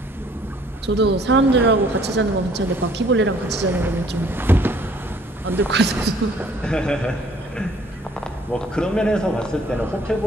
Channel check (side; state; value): both; normal; correlation 0.59